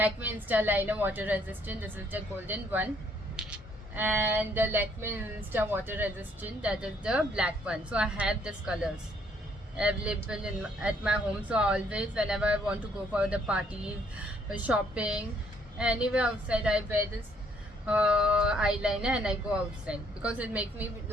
Insta Liner Water Resistant, this is the golden one, and the Lakme Insta Water Resistant, that is the black one. So I have these colors available at my home. So always whenever I want to go for the parties, shopping, anywhere outside, I wear this eyeliner and I go outside because it makes me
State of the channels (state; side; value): normal; both; correlation 0.66